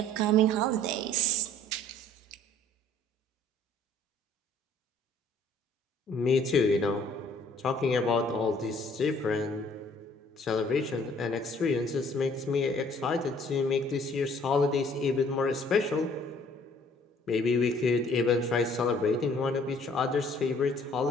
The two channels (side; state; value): both; normal; correlation 0.58